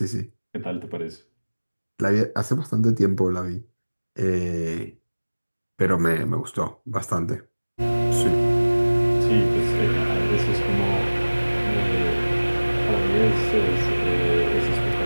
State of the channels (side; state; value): both; inverted; correlation -1.00